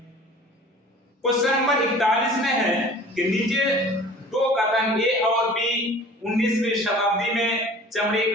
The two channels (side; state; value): both; normal; correlation 0.45